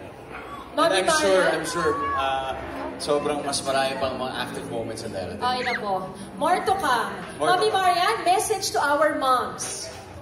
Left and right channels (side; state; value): both; identical; correlation 1.00